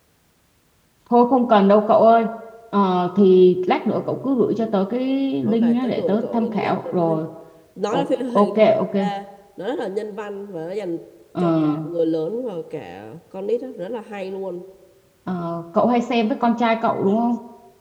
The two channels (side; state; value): both; identical; correlation 1.00